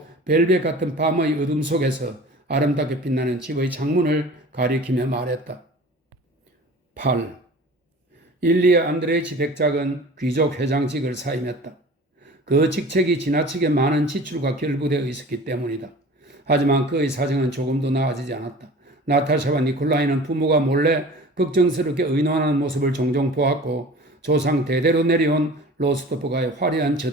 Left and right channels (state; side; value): normal; both; correlation 0.41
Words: 벨벳 같은 밤의 어둠 속에서 아름답게 빛나는 집의 창문을 가리키며 말했다. 8. 일리아 안드레이치 백작은 귀족 회장직을 사임했다. 그 직책이 지나치게 많은 지출과 결부되어 있었기 때문이다. 하지만 그의 사정은 조금도 나아지지 않았다. 나타샤와 니콜라이는 부모가 몰래 걱정스럽게 의논하는 모습을 종종 보았고 조상 대대로 내려온 로스토프가의 화려한